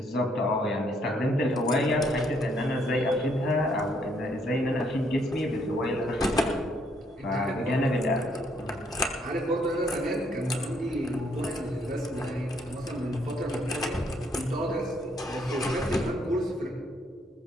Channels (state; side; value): normal; both; correlation 0.70